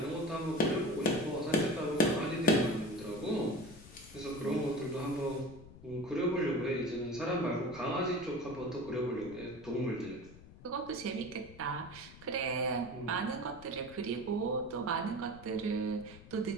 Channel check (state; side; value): noise; left; rumble, 18 dB below the sound